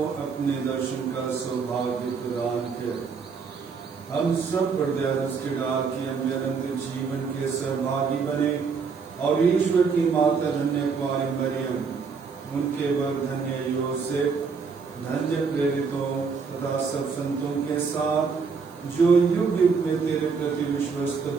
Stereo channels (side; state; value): left; quieter; 5.4 dB